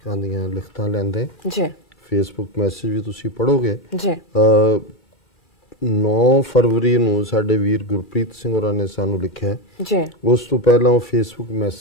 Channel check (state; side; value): normal; both; correlation 0.12